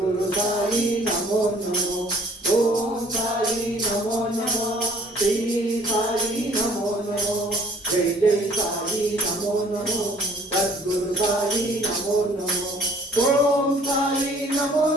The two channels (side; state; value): both; normal; correlation 0.55